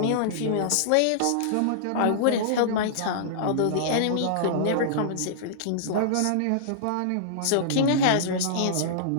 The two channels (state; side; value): different; both; correlation -0.02